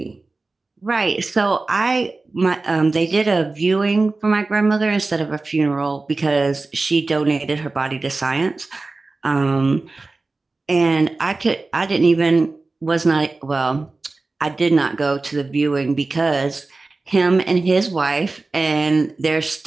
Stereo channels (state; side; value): quieter; left; 3.5 dB